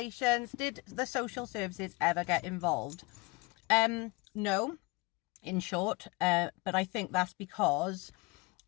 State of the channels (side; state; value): right; quieter; 25.1 dB